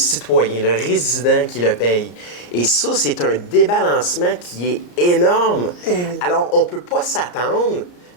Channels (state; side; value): late; right; 34 ms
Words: le résident qui le paye. Et ça, c'est un débalancement qui est énorme. Alors, on ne peut pas s'attendre